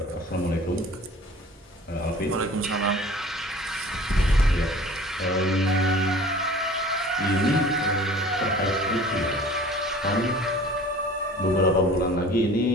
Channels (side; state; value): both; normal; correlation 0.45